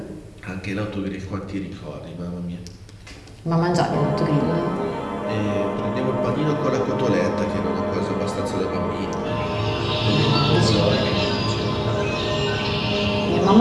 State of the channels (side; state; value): both; identical; correlation 1.00